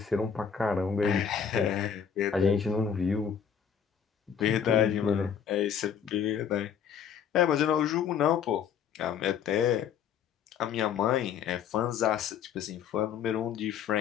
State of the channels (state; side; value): quieter; right; 7.8 dB